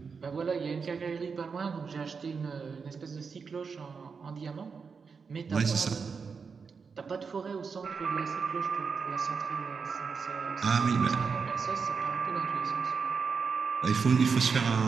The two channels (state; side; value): quieter; left; 5.5 dB